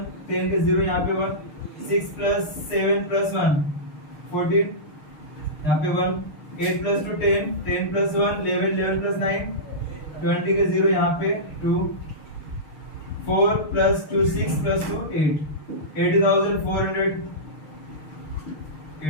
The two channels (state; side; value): late; right; 6.6 ms